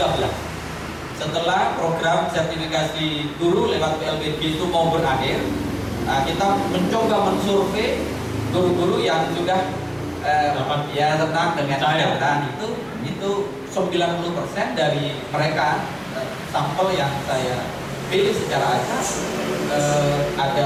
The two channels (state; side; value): identical; both; correlation 1.00